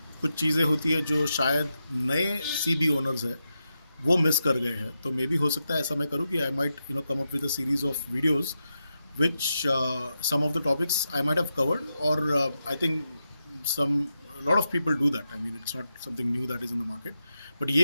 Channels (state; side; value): inverted; both; correlation -0.87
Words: कुछ चीज़ें होती है जो शायद नए सी बी ओनर्स है वो मिस कर गए हैं। तो मे बी हो सकता है ऐसा मैं करूँ कि I might come up with a series of videos which some of the topics I might have covered, or I think some a lot of people do that. I mean, it's not something new that is in the market. But